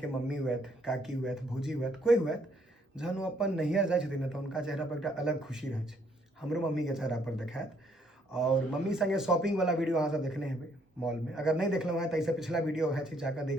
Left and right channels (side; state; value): both; normal; correlation 0.68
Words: मम्मी हुएत, काकी हुएत, भौजी हुएत, कोई हुएत, जहन ओ अपन नैहर जाइ छथिन न तऽ उनका चेहरा पर एकटा अलग खुशी रहै छै। हमरो मम्मी के चेहरा पर देखात। और मम्मी संगे शॉपिंग वाला वीडियो अहाँ सब देखने हेबै मॉल में। अगर नहीं देखलहुँ हैं तो इससे पिछला वीडियो है जाकर